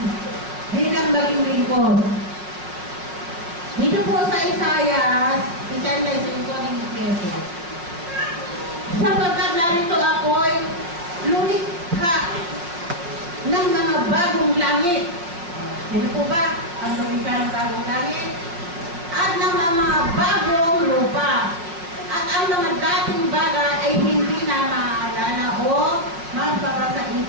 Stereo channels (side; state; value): left; late; 5.8 ms